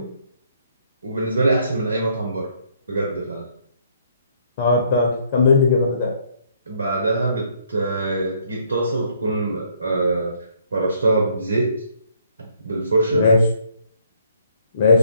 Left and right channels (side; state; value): both; inverted; correlation -0.66